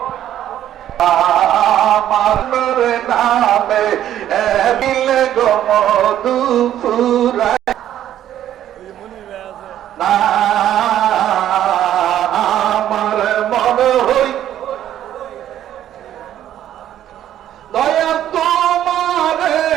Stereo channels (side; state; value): left; quieter; 11.5 dB